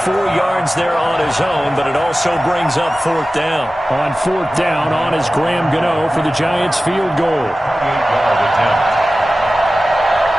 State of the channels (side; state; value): both; normal; correlation 0.95